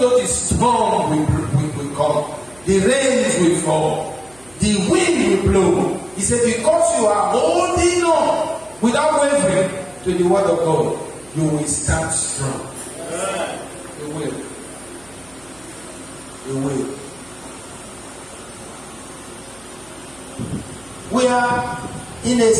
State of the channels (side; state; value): right; noise; hum, 27 dB below the sound